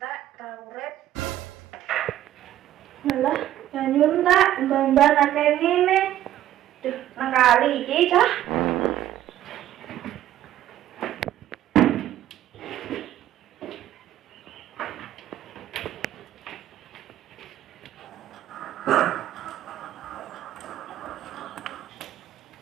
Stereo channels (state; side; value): quieter; left; 12.8 dB